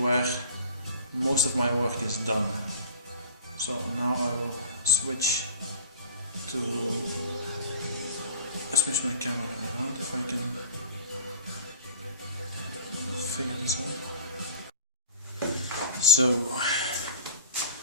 most of my work is done. So now I will switch my camera around if I can figure this out. So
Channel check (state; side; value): inverted; both; correlation -0.38